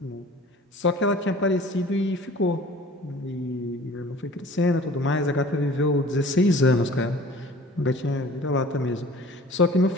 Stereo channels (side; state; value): both; normal; correlation 0.46